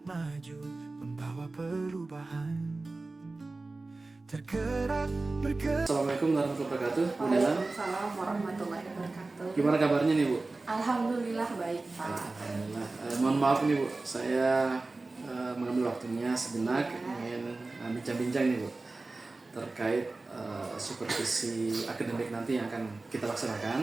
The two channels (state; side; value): quieter; left; 3.3 dB